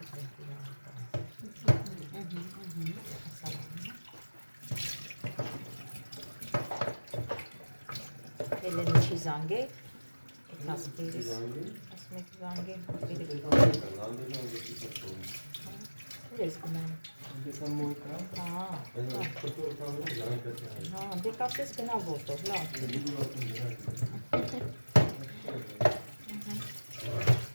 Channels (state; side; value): inverted; both; correlation -1.00